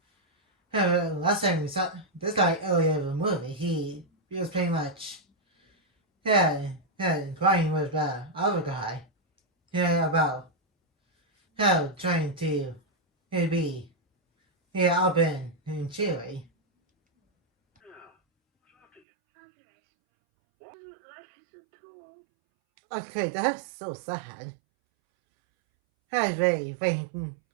Last time we saw this guy earlier in the movie, he was pretty much crying with the other guy about how trying to be up and cheery. Now, what's after you? What? Life is so tall. Okay, that's so sad. I really think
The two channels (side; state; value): left; drops out; at 19.0 s